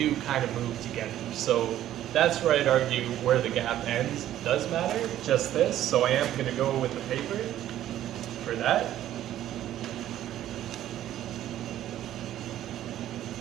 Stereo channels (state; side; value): quieter; left; 12.5 dB